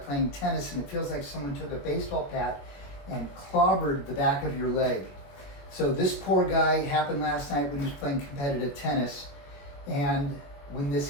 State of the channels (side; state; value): right; late; 21 ms